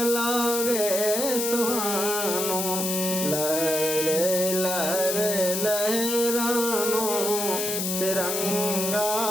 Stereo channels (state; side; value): noise; left; hiss, 1 dB below the sound